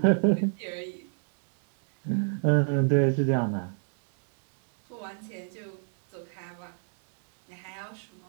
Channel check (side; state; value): left; silent; 56 dB below the other